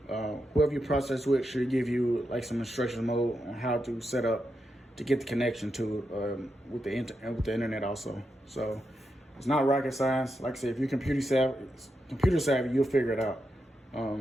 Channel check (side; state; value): both; normal; correlation 0.86